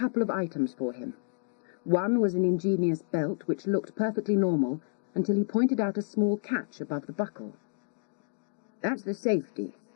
of items for him. One was an ingenious belt which looked perfectly normal until he pointed out a small catch above the buckle. That's the safety,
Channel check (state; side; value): silent; right; digital silence